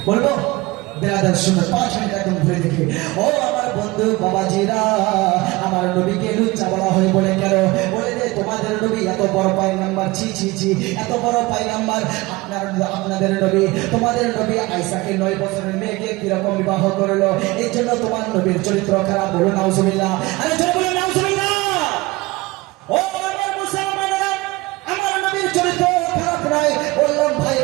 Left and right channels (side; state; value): left; quieter; 21.9 dB